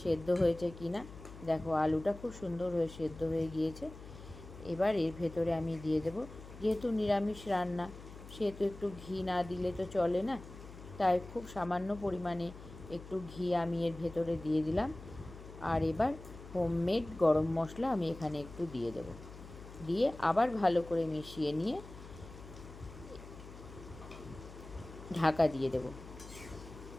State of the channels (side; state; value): left; noise; hum, 15 dB below the sound